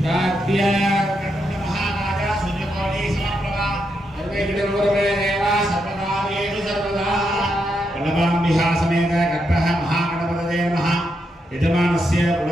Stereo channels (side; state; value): both; normal; correlation 0.82